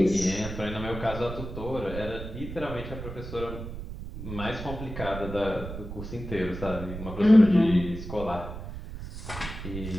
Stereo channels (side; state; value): right; noise; rumble, 9 dB below the sound